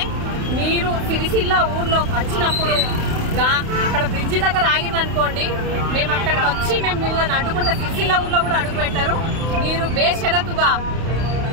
మీరు సిరిసిల్ల ఊర్లో వచ్చినప్పుడు అక్కడ బ్రిడ్జి దగ్గర ఆగిరనుకోండి, మేము అక్కడికి వచ్చి మిమ్మల్ని అడ్డుకుంటే సిరిసిల్ల ఊర్లో కూడా అడుగు పెట్టారు. మీరు బేషరతుగా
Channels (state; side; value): late; left; 31 ms